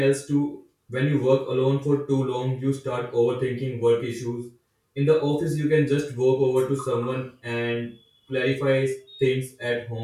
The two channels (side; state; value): both; identical; correlation 1.00